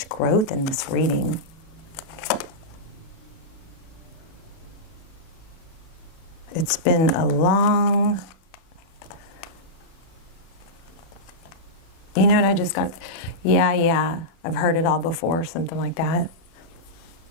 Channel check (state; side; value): late; right; 36 ms